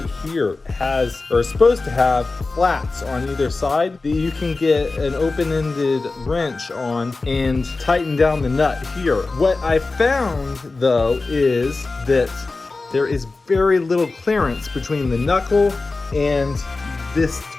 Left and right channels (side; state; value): right; quieter; 3.6 dB